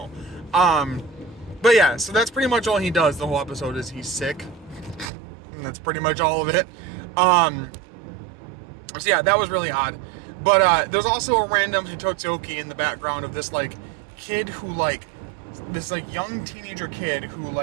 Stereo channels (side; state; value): left; drops out; at 5.1 s